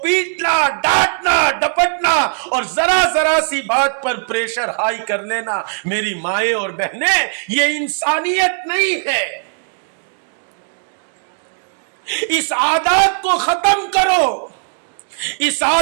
پیٹنا، ڈانٹنا، ڈپٹنا اور ذرا ذرا سی بات پر پریشر ہائی کر لینا، میری مائیں اور بہنیں، یہ انسانیت نہیں ہے۔ اس عادات کو ختم کرو، اس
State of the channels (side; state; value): left; silent; digital silence